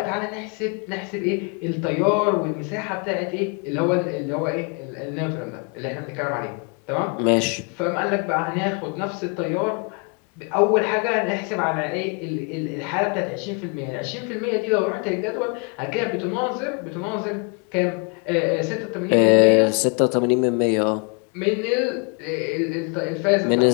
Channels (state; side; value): quieter; right; 36.2 dB